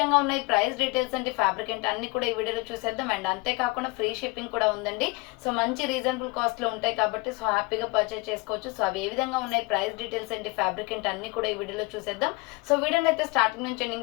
ఉన్నాయి, ప్రైస్ డీటెయిల్స్ అంటే ఫ్యాబ్రిక్ ఏంటి అన్ని కూడా ఈ వీడియోలో చూసేద్దాం. అండ్ అంతేకాకుండా ఫ్రీ షిప్పింగ్ కూడా ఉందండి. సో మంచి రీజనబుల్ కాస్ట్లో ఉంటాయి కాబట్టి సో హ్యాపీగా పర్చేస్ చేసుకోవచ్చు. సో అవి ఏ విధంగా ఉన్నాయి, ప్రైస్ డీటెయిల్స్ ఏంటి, ఫ్యాబ్రిక్ ఏంటి అన్ని కూడా ఈ వీడియోలో చూసేద్దాం. సో వీడియోని అయితే స్టార్టింగ్ నుంచి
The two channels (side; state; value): right; quieter; 25.1 dB